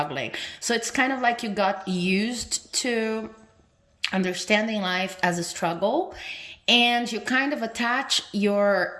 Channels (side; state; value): both; identical; correlation 1.00